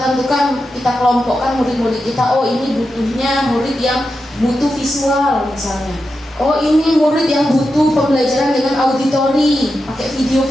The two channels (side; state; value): both; normal; correlation 0.89